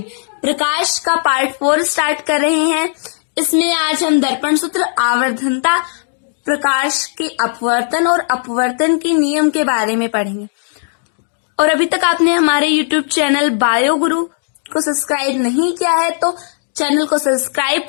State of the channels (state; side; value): silent; right; digital silence